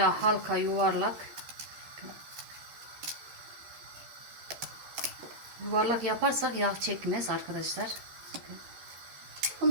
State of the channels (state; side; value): late; left; 13 ms